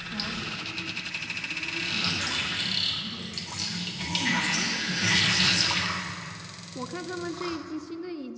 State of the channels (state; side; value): identical; both; correlation 1.00